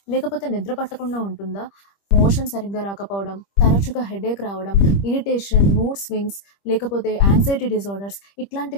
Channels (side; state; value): right; late; 25 ms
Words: లేకపోతే నిద్ర పట్టకుండా ఉంటుందా? మోషన్ సరిగ్గా రాకపోవడం, తరచుగా హెడేక్ రావడం, ఇరిటేషన్, మూడ్ స్వింగ్స్ లేకపోతే యాంక్సైటీ డిజార్డర్స్